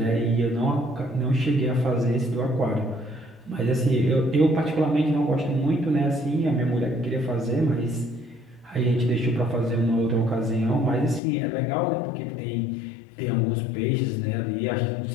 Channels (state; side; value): drops out; right; at 11.2 s